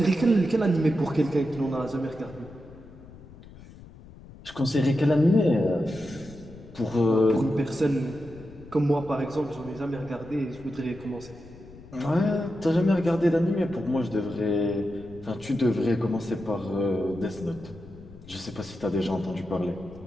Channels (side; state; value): left; noise; rumble, 19 dB below the sound